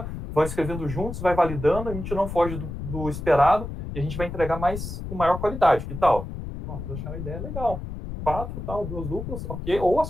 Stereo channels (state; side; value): noise; left; rumble, 7 dB below the sound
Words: vão escrevendo juntos, vai validando, a gente não foge do esperado e a gente vai entregar mais com maior qualidade. Que tal? Vocês acharam a ideia legal. 4, tal, 2 duplas, ok. Ou